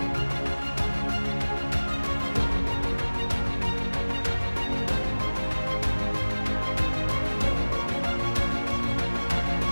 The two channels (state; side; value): inverted; both; correlation -1.00